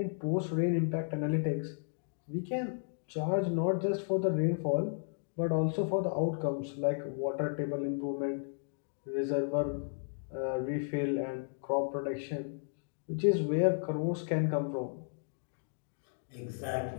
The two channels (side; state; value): right; silent; digital silence